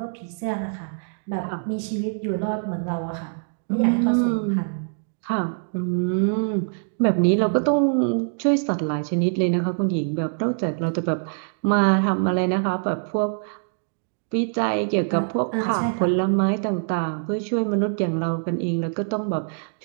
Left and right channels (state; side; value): silent; left; digital silence